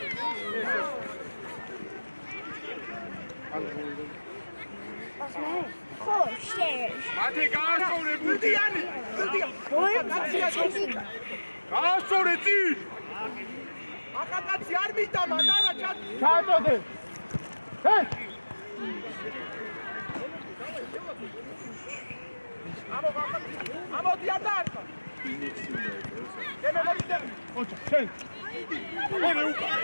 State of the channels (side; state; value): both; inverted; correlation -1.00